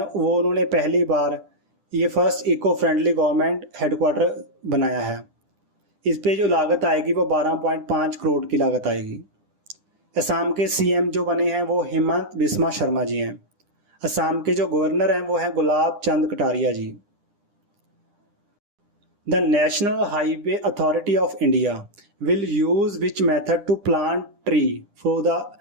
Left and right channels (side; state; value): left; late; 10 ms